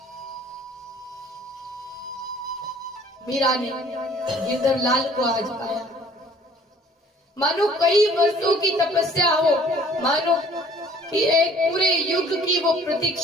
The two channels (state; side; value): normal; both; correlation 0.55